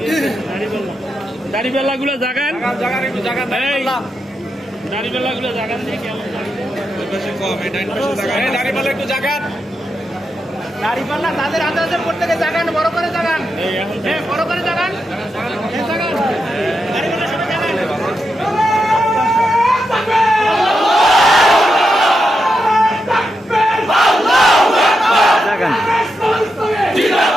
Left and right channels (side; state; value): both; normal; correlation 0.86